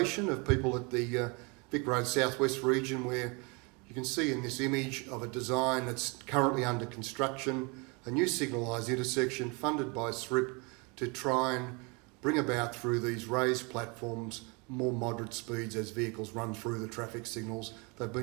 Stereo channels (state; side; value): quieter; left; 30.5 dB